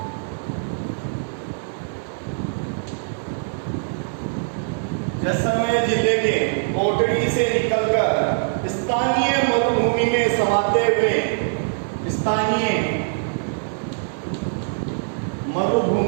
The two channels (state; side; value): silent; left; digital silence